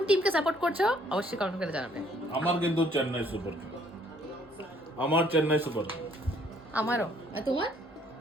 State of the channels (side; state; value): both; normal; correlation 0.63